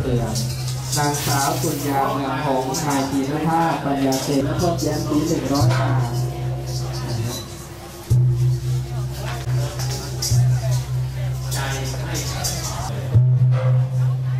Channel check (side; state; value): both; identical; correlation 1.00